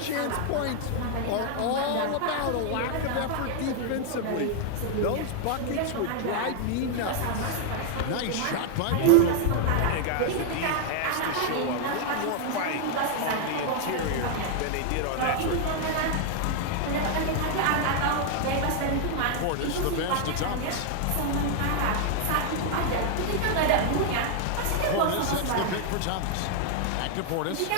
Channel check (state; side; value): different; both; correlation 0.00